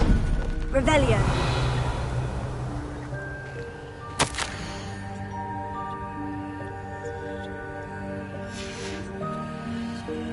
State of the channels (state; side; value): identical; both; correlation 1.00